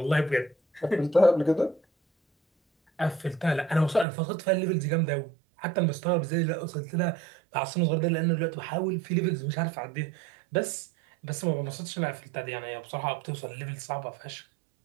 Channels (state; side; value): drops out; left; at 4.0 s